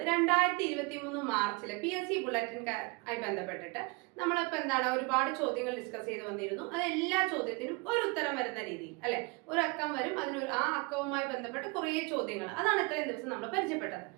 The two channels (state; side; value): quieter; left; 28.8 dB